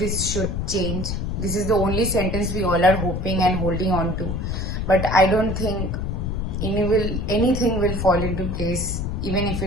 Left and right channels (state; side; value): noise; left; rumble, 2 dB below the sound